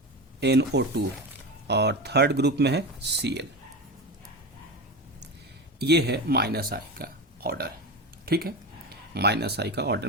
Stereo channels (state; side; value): normal; both; correlation 0.23